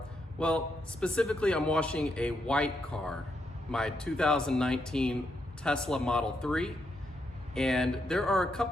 Well, specifically I'm washing a white car, my 2019 Tesla Model 3. And there are a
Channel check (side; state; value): both; normal; correlation 0.80